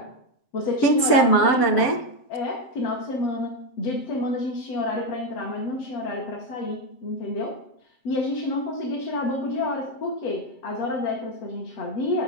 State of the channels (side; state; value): right; late; 7.7 ms